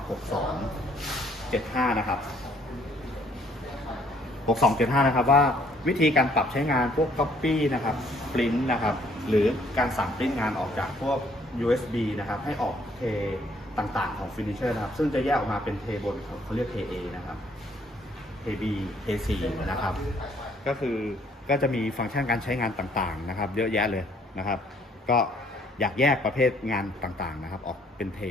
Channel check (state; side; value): normal; both; correlation 0.63